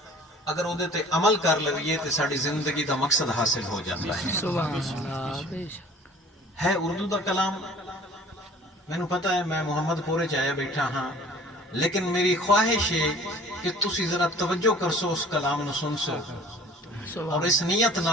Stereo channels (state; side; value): normal; both; correlation 0.48